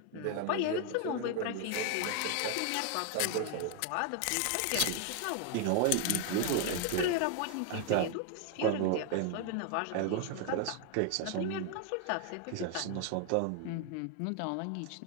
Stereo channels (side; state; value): both; different; correlation 0.01